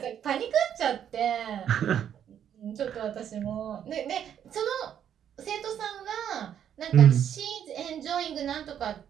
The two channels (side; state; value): left; quieter; 9.4 dB